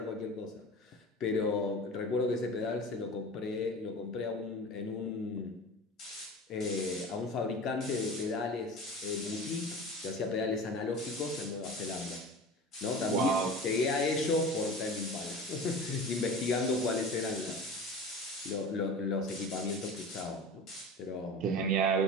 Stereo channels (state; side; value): normal; both; correlation 0.35